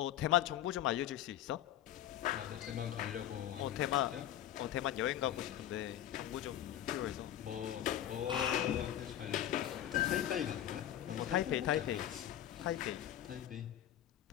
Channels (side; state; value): right; quieter; 11.7 dB